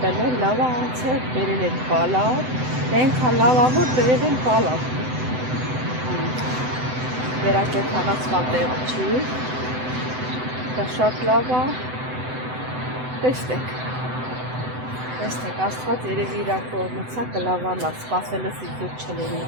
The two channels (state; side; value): late; left; 7.9 ms